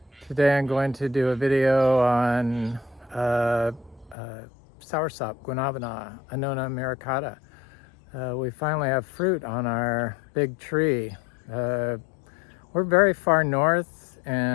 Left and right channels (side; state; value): right; drops out; at 4.2 s